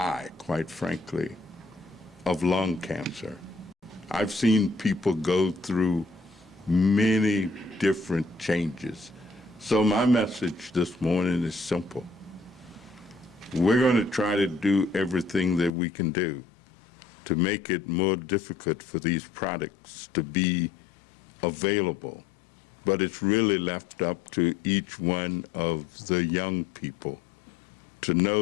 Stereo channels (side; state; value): right; drops out; at 15.7 s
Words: quite frankly, of lung cancer. I've seen people go through many different changes. So my message this morning is simple. We're going to try to do everything that we can do to make it more difficult for these products to be available. But it's really left up to each one of the young people to